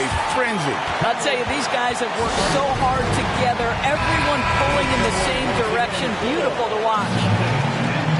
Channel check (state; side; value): identical; both; correlation 1.00